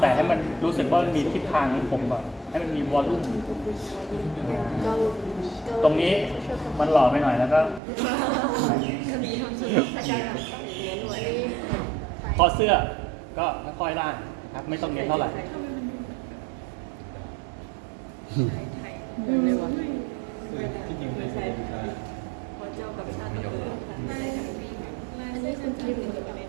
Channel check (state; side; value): drops out; left; at 7.8 s